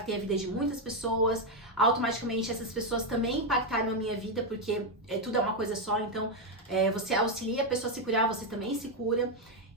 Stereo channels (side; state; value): both; normal; correlation 0.04